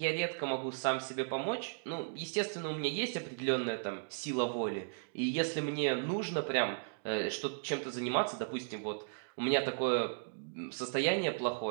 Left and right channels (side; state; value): left; silent; digital silence